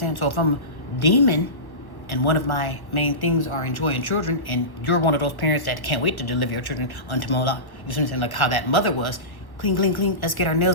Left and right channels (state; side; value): late; right; 1.2 ms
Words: So if I'm a demon and one of my main things are enjoying children, and you're one of those parents that can't wait to deliver your children unto Moloch, you see what I'm saying? Like how that mother was, clean, clean, clean, let's get our